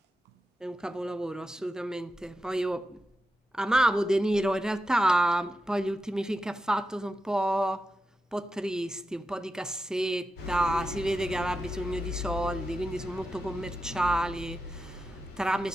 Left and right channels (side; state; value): both; normal; correlation 0.89